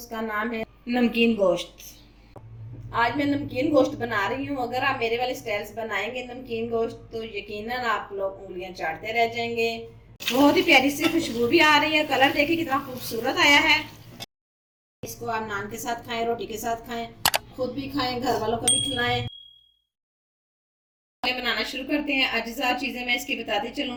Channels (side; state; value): both; identical; correlation 1.00